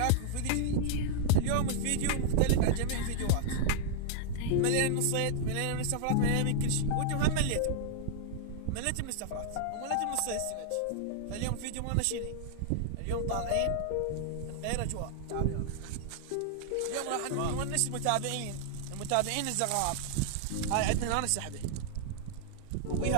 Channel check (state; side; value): different; both; correlation -0.01